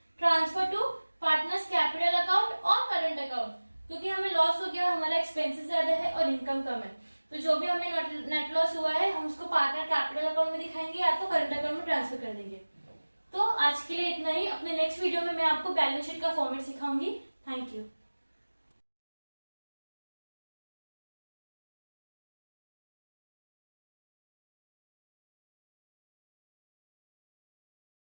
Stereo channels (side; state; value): both; inverted; correlation -1.00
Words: transfer to partners capital account और करंट अकाउंट, क्योंकि हमें लॉस हो गया, हमारा एक्सपेंसेस ज्यादा है और इनकम कम है, तो जो भी हमें नेट लॉस हुआ है हम उसको पार्टनर कैपिटल अकाउंट में दिखाएंगे या तो करंट अकाउंट में ट्रांसफर कर देंगे। तो आज के लिए इतना ही। अपने नेक्स्ट वीडियो में मैं आपको बैलेंस शीट का फॉर्मेट सिखाऊंगी। Thank you.